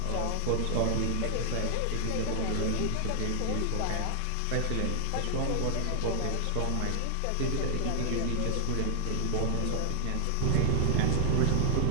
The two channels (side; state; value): both; different; correlation 0.00